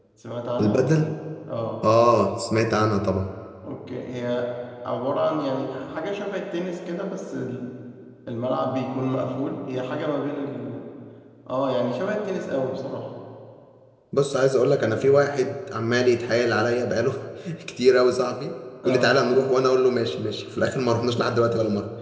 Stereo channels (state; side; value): identical; both; correlation 1.00